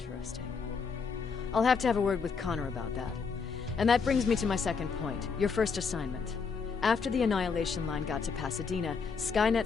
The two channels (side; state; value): right; quieter; 5.4 dB